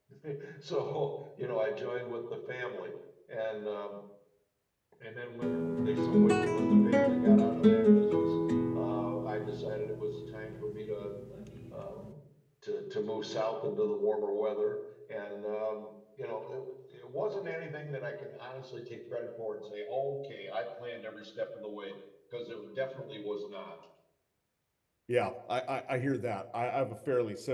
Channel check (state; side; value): identical; both; correlation 1.00